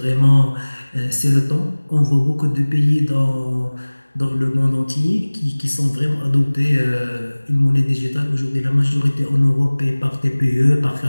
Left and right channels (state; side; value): inverted; both; correlation -1.00